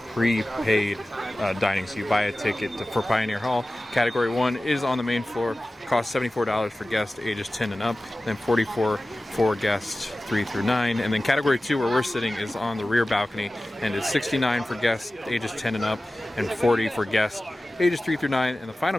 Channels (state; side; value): normal; both; correlation 0.96